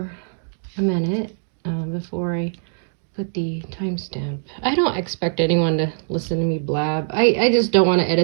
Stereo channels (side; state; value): left; silent; digital silence